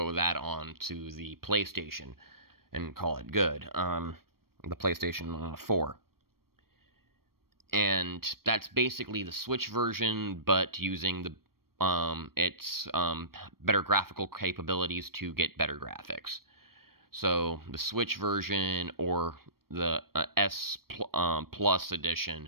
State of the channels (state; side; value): late; left; 0.94 ms